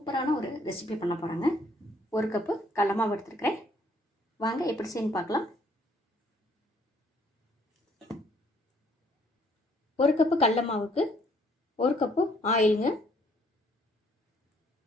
ஒரு ரெசிபி பண்ண போகிறாங்க. ஒரு கப்பு கடல மாவு எடுத்துருக்கிறேன். வாங்க எப்படி செய்யணும் பார்க்கலாம். ஒரு கப்பு கடல மாவுக்கு ஒரு கப்பு ஆயிலுங்க.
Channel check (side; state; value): both; normal; correlation 0.64